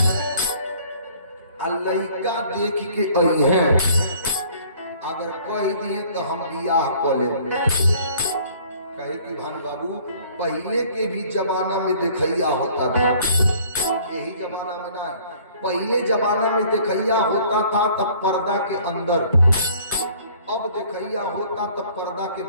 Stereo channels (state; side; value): inverted; both; correlation -0.55